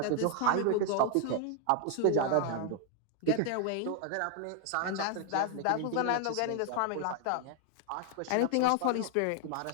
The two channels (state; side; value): different; both; correlation 0.00